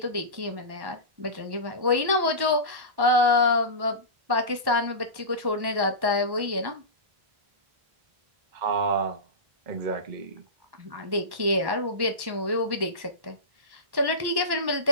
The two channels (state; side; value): late; left; 1.1 ms